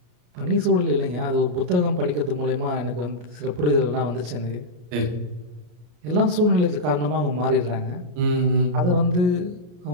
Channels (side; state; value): left; late; 33 ms